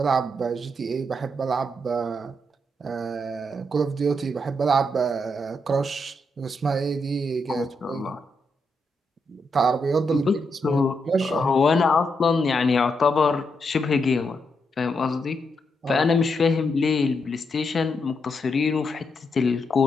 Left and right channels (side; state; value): both; normal; correlation 0.81